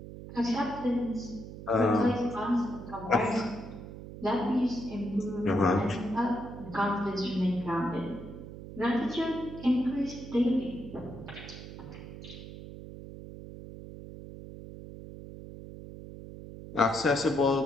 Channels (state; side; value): noise; right; hum, 12 dB below the sound